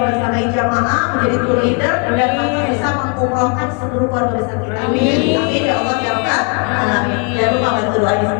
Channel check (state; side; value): quieter; right; 35.8 dB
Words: jamaah, menjadi tour leader, dan bisa mengumrohkan seluruh keluarga besar kita. Amin. Amin ya Allah ya Rabbal Alamin. Jangan lupa bantu doanya